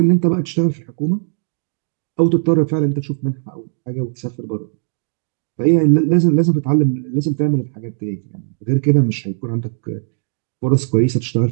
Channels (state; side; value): silent; left; digital silence